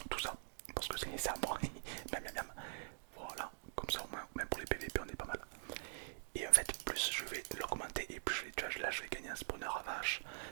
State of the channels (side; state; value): left; silent; digital silence